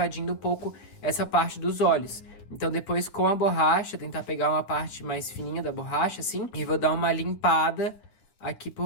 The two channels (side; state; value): right; late; 10 ms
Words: um pouco essa parte dos olhos. Então depois com a borracha, tentar pegar uma parte mais fininha da borracha, assim, e vou dar uma limpada aqui